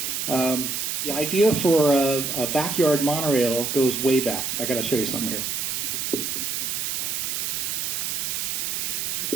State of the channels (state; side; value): noise; right; hiss, 1 dB below the sound